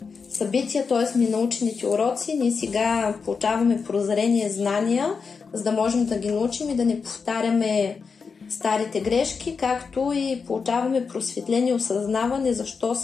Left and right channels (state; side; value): quieter; right; 5.3 dB